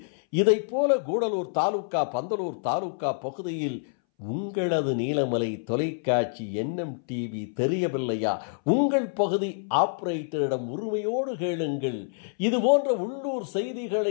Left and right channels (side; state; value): right; silent; 60 dB below the other